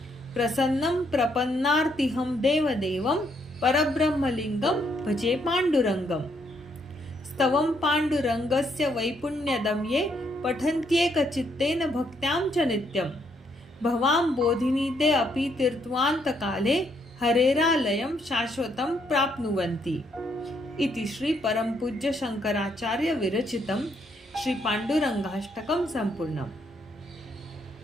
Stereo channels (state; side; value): normal; both; correlation 0.73